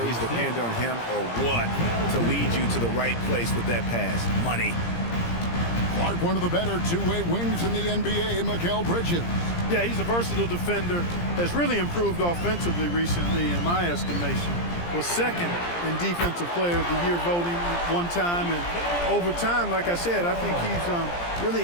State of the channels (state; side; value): late; right; 17 ms